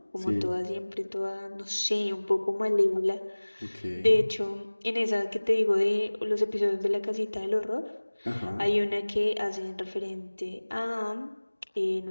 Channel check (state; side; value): inverted; both; correlation -1.00